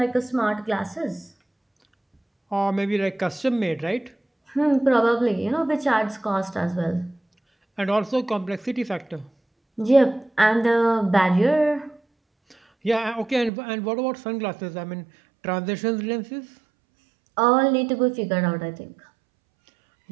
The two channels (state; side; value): drops out; left; at 13.5 s